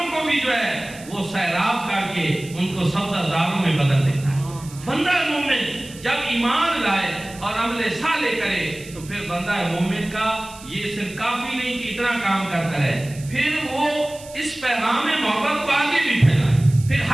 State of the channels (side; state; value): right; noise; hiss, 18 dB below the sound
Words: کو بھی جو ہے وہ سیراب کر کے ان کو سبزہ زاروں میں بدل دیتا ہے۔ بندہ مومن جب ایمان لائے اور عمل صالح کرے تو پھر بندہ مومن کا یہ صرف کافی نہیں کہ اتنا کام کرتا رہے، پھر وہ اس پیغام محبت کو آگے بھی پھیلائے، پھر